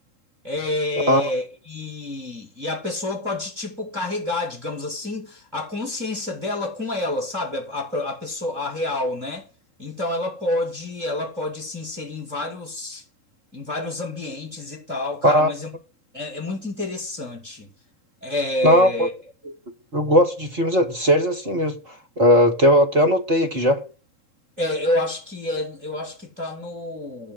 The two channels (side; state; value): left; late; 3.7 ms